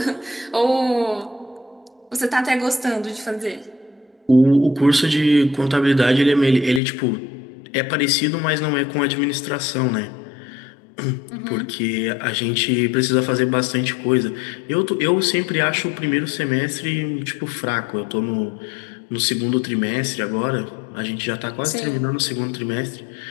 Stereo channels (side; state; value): right; drops out; at 6.8 s